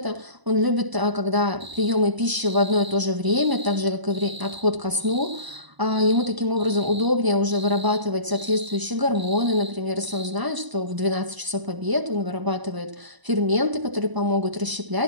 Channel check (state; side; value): late; left; 1.0 ms